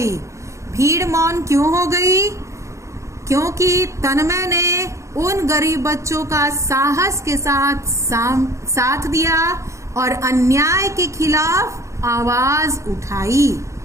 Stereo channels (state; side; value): late; left; 0.14 ms